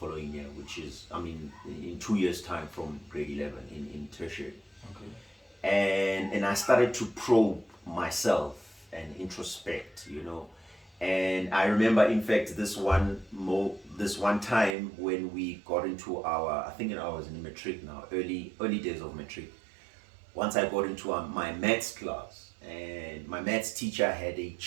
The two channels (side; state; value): left; drops out; at 14.8 s